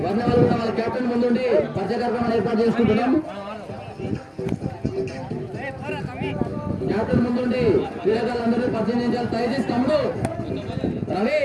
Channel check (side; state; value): both; identical; correlation 1.00